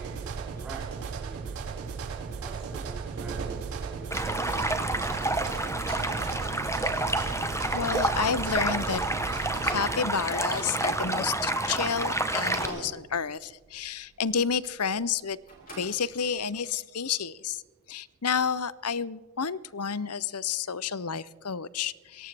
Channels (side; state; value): both; normal; correlation 0.08